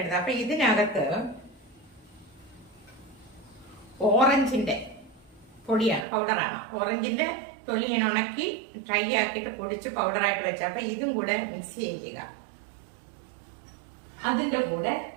അപ്പൊ ഇതിനകത്ത് ഓറഞ്ചിന്റെ പൊടിയാണ്, പൗഡറാണ്. ഓറഞ്ചിന്റെ തൊലി ഞാൻ ഉണക്കി ഡ്രൈ ആക്കിയിട്ട് പൊടിച്ച് പൗഡറായിട്ട് വെച്ച. അപ്പൊ ഇതും കൂടെ മിക്സ് ചെയ്യുക. അതിന്റെ കൂടെ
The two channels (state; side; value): drops out; left; at 6.1 s